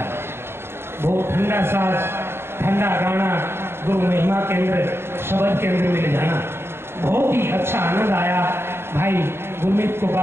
बहुत ठंडा साज, ठंडा गाना, गुरु महिमा केंद्र, शब्द के अंदर मिल जाना, बहुत ही अच्छा आनंद आया। भाई गुरमीत को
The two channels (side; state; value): left; late; 0.12 ms